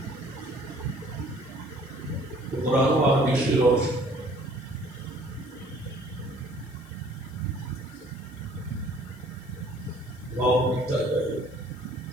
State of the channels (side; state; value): left; noise; hiss, 26 dB below the sound